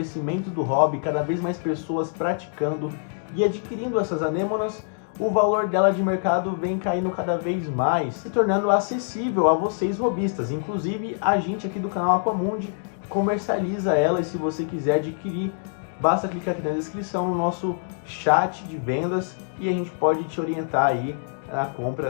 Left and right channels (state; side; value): silent; right; digital silence